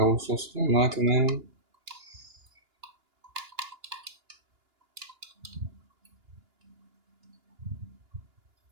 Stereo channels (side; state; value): left; late; 2.9 ms